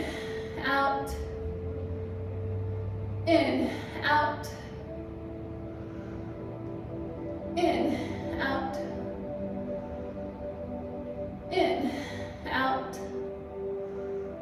Out. In. Out. In. Out. In. Out.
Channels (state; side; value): identical; both; correlation 1.00